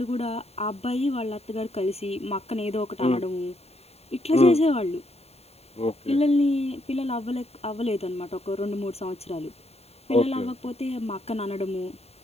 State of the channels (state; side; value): late; right; 0.30 ms